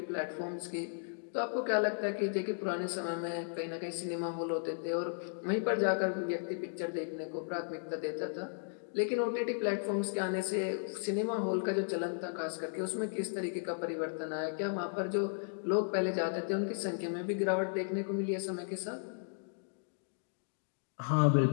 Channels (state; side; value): silent; right; digital silence